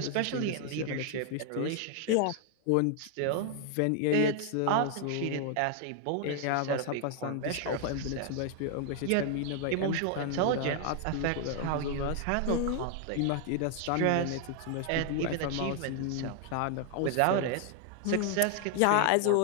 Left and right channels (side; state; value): both; different; correlation 0.00